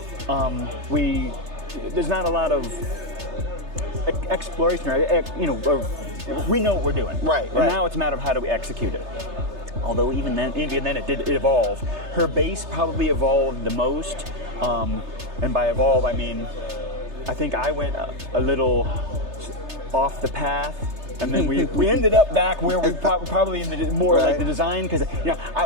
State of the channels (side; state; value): left; late; 3.3 ms